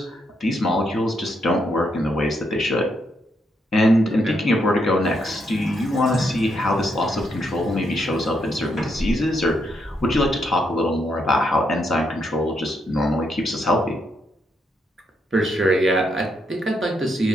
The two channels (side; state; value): both; normal; correlation 0.78